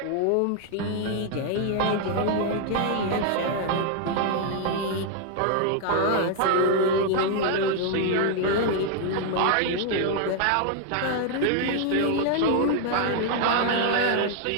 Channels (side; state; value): both; different; correlation 0.00